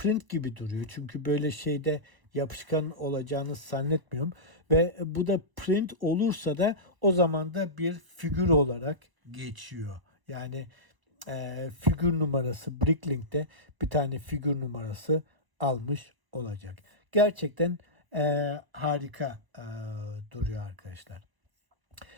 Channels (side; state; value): left; late; 1.0 ms